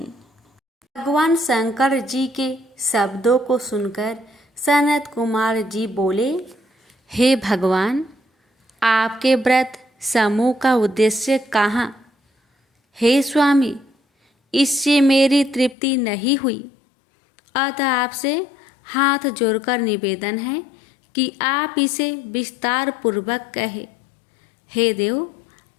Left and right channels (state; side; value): drops out; right; at 15.8 s